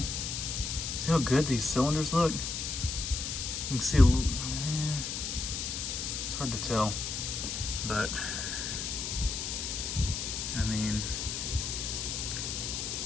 how good these cylinders look? You can see it's hard to tell, but I mean,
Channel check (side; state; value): left; noise; hiss, 3 dB below the sound